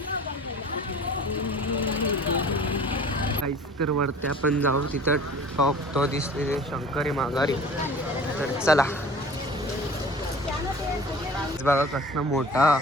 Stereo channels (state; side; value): normal; both; correlation 0.44